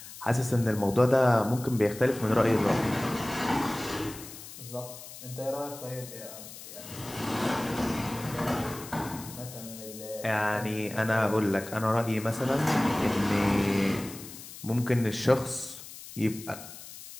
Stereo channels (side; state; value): left; noise; hiss, 14 dB below the sound